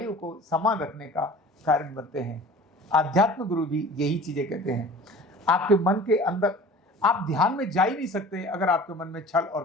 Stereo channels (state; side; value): normal; both; correlation 0.43